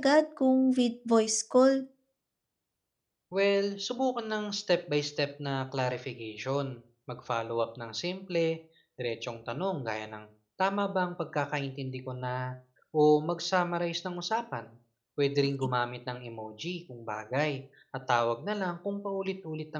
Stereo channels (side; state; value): both; identical; correlation 1.00